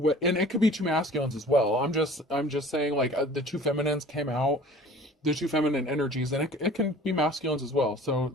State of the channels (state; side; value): normal; both; correlation 0.46